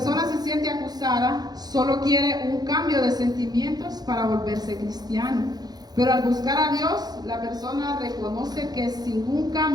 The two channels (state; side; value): late; left; 0.19 ms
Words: se siente acusada, solo quiere un cambio de sentimientos para volverse cristiano. Pero al buscar a Dios, la persona reconoce que sin un